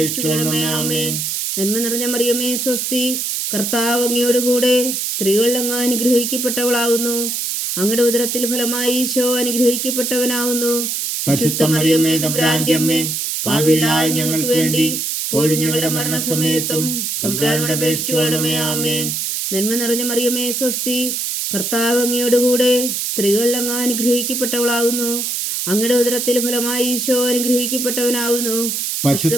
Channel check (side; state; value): right; noise; hiss, 2 dB below the sound